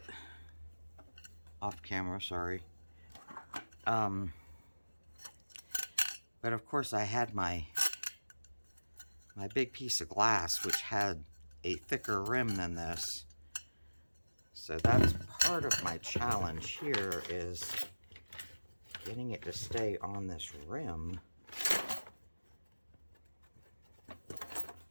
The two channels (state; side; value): inverted; both; correlation -1.00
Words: Off camera, sorry. But of course I had my big piece of glass, which had a thicker rim than this. So that's part of my challenge here, is getting it to stay on this rim.